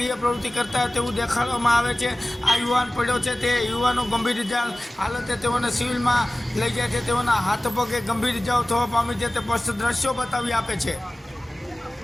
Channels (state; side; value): normal; both; correlation 0.97